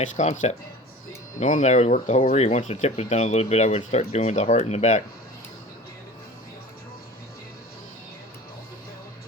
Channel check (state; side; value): normal; both; correlation 0.39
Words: concept. Normally I would work the whole reed. Once the tip was done a little bit, I would start doing the heart in the back.